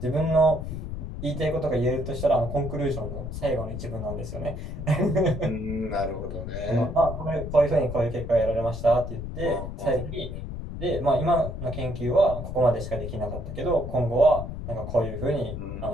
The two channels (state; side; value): noise; left; rumble, 7 dB below the sound